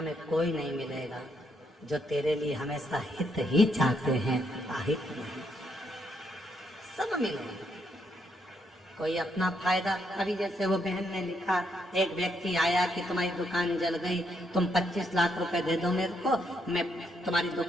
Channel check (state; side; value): normal; both; correlation 0.76